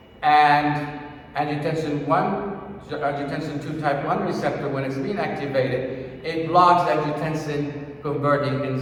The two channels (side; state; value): both; identical; correlation 1.00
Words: And angiotensin 2 type 1 receptor, when it's being activated, it blocks angiotensin converting